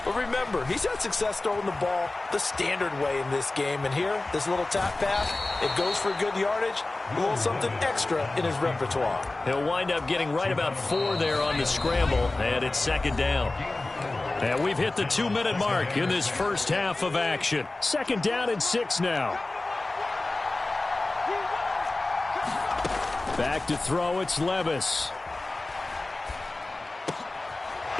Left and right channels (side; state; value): right; quieter; 3.0 dB